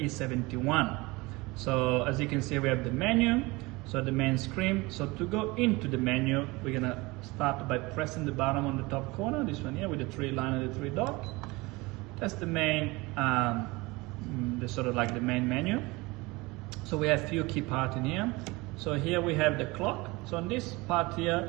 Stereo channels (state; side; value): quieter; left; 23.3 dB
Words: So as you can see, we have the menu, so the main screen. So to go into the menu, we're gonna start by pressing the button on the top corner, this one here with the three line and the three dots. That's the main, the sort of like the main menu. So we have few key parts in here. So here we have the clock. So on this part